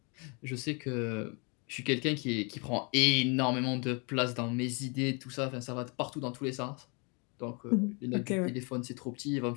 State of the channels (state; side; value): quieter; right; 33.2 dB